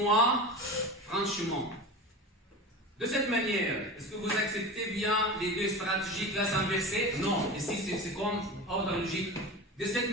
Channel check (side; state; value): both; normal; correlation 0.29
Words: franchement, de cette manière, est-ce que vous acceptez bien les deux stratégies classe inversée? Non, ici c'est comme ordre logique. De cette